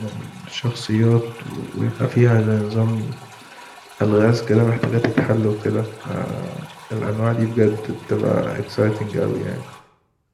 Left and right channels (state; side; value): identical; both; correlation 1.00